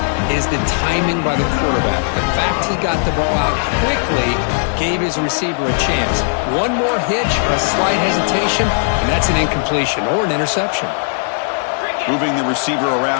is the timing by the quarterback. The fact he got the ball out quickly gave his receiver a chance. One more hitch or a slight hesitation, and that's an incompletion or an interception. Moving the receiver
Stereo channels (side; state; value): right; silent; digital silence